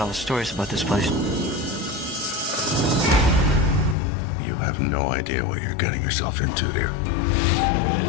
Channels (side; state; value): right; drops out; at 4.0 s